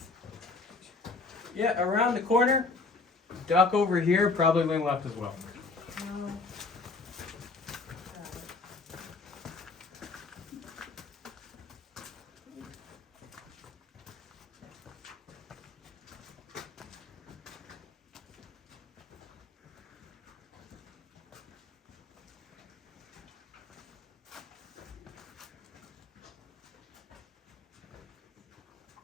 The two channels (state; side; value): quieter; right; 3.8 dB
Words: Yeah, around the corner, duck over here, probably lean left as well. No.